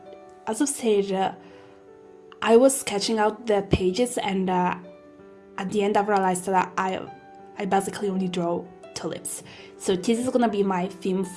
as I've said, I was sketching out the pages and at the end I've realized that I basically only draw tulips. So this is gonna be my theme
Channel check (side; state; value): both; identical; correlation 1.00